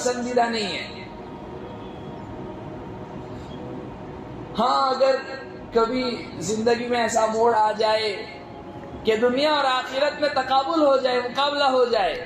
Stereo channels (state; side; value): identical; both; correlation 1.00